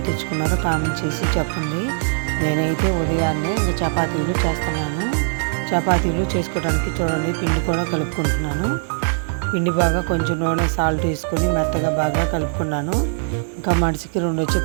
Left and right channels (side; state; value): left; silent; 65 dB below the other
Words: తెచ్చుకున్నారో కామెంట్ చేసి చెప్పండి. నేనైతే ఉదయాన్నే ఇంకా చపాతీలు చేస్తున్నాను. చపాతీలు చేసుకోవడానికి చూడండి, పిండి కూడా కలుపుకుంటున్నాను. పిండి బాగా కొంచెం నూనె సాల్ట్ వేసుకొని మెత్తగా బాగా కలుపుకున్నాను. ఇంకా మనిషికి 2